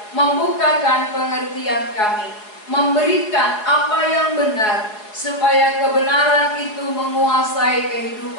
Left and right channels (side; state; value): right; late; 4.7 ms